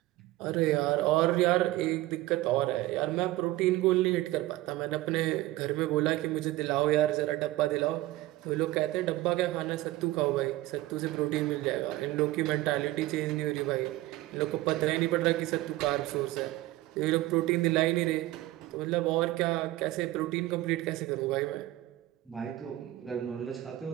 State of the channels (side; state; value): left; quieter; 17.2 dB